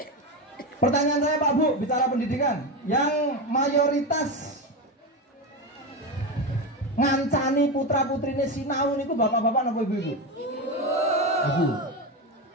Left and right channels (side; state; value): both; normal; correlation 0.16